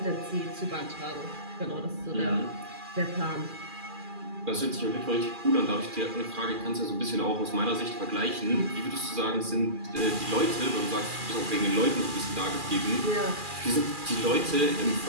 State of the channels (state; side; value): late; left; 2.4 ms